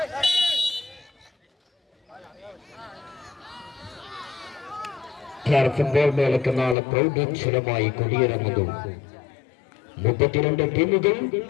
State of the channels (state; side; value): drops out; right; at 6.8 s